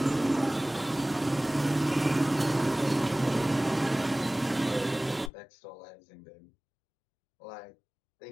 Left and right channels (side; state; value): right; drops out; at 5.3 s